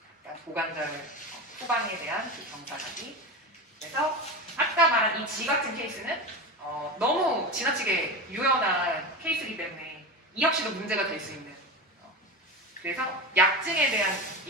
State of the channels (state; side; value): normal; both; correlation 0.23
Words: 그러니까 고관절 후방에 대한 그 경사각이. 그래서 아까 말한 이 G 같은 케이스는 너무 지나치게 유연한 케이스이기 때문에 이 역시도 문제가 될 수 있는. 그래서 약증에 대한